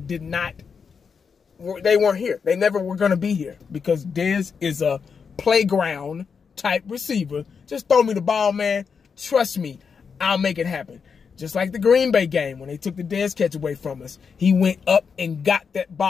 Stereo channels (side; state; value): right; quieter; 6.0 dB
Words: they weren't here. They never were going to be here because Dez is a playground type receiver. Just throw me the ball, man. Trust me, I'll make it happen. Just like the Green Bay game when they took the Dez catch away from us. He went up and got that